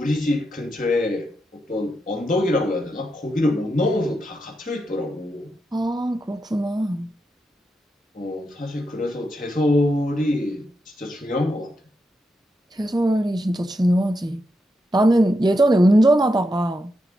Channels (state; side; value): normal; both; correlation 0.85